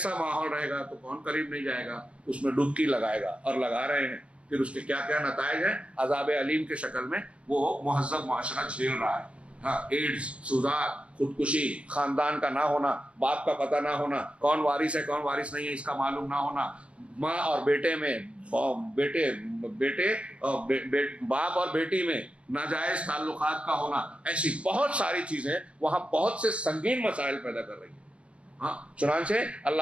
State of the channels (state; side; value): late; left; 0.060 ms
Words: ماحول رہے گا تو کون قریب نہیں جائے گا، اس میں ڈبکی لگائے گا، اور لگا رہے ہیں۔ پھر اس کے کیا کیا نتائج ہیں، عذاب علیم کے شکل میں وہ مہذب معاشرہ جھیل رہا ہے۔ ہاں، ایڈز، سوزات، خودکشی، خاندان کا نہ ہونا، باپ کا پتہ نہ ہونا، کون وارث ہے کون وارث نہیں ہے اس کا معلوم نہ ہونا، ماں اور بیٹے میں، باپ اور بیٹی میں ناجائز تعلقات کا ہونا، ایسی بہت ساری چیزیں وہاں بہت سے سنگین مسائل پیدا کر رہی ہیں۔ ہاں، چنانچہ